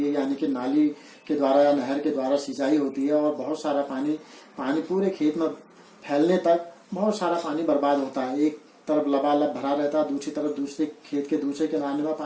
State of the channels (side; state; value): both; identical; correlation 1.00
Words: है, यानी कि नाली के द्वारा या नहर के द्वारा सिंचाई होती है और बहुत सारा पानी पूरे खेत में फैलने तक बहुत सारा पानी बर्बाद होता है। एक तरफ लबालब भरा रहता है, दूसरी तरफ दूसरे खेत के दूसरे किनारे में